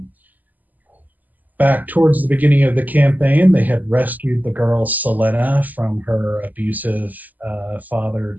Back towards the beginning of the campaign, they had rescued the girl Sylenna from her abusive father,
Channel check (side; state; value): left; late; 0.082 ms